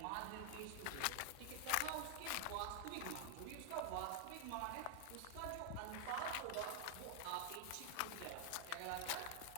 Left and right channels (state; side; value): different; both; correlation 0.00